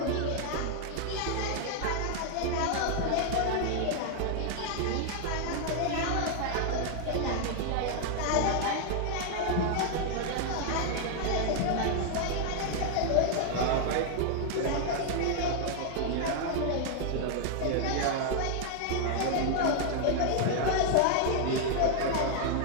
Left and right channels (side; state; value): both; different; correlation 0.00